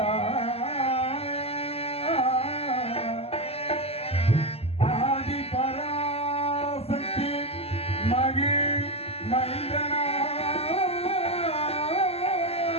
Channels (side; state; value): right; late; 0.29 ms